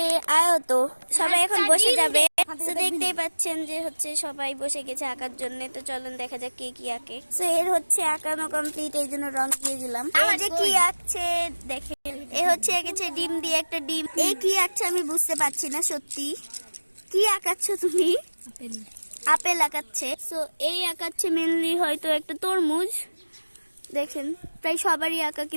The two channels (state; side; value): inverted; both; correlation -1.00